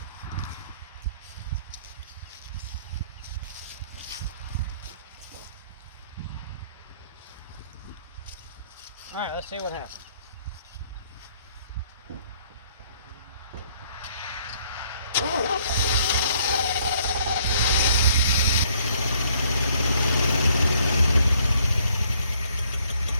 All right, let's see what happens.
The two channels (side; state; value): both; inverted; correlation -0.65